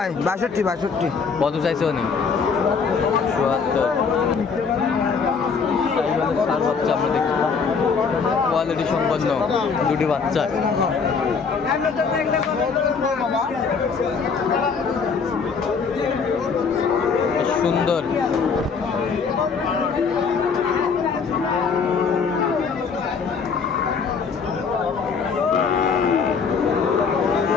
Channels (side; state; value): right; quieter; 5.5 dB